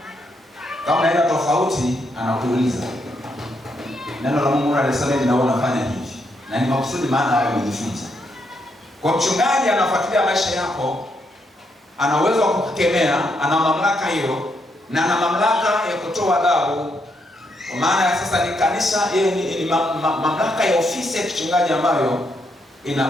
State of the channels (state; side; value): normal; both; correlation 0.78